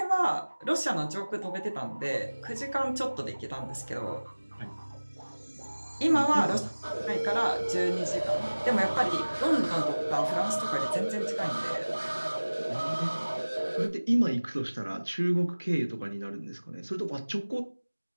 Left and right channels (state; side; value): inverted; both; correlation -1.00